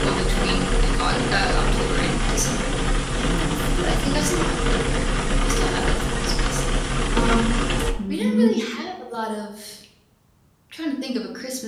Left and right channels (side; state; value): both; identical; correlation 1.00